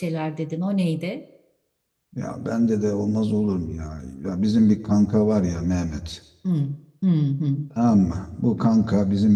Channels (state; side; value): identical; both; correlation 1.00